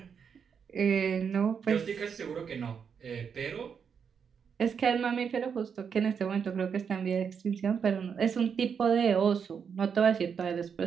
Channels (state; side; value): quieter; left; 6.8 dB